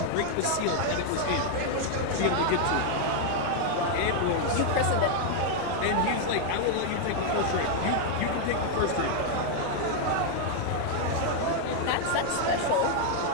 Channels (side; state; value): both; different; correlation 0.00